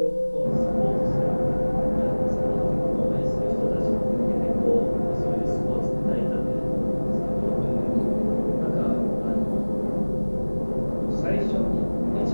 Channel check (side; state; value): both; inverted; correlation -1.00